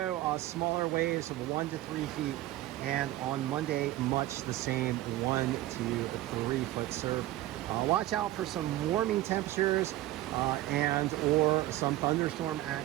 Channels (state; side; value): quieter; left; 15.6 dB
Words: smaller waves of 1 to 3 feet, and on Monday, much the same, 1 to 3 foot surf. Watch out for some warming temperatures and or some thunderstorm